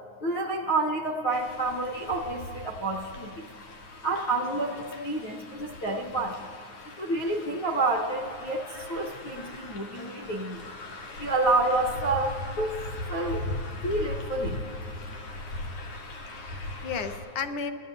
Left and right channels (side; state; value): right; late; 9.5 ms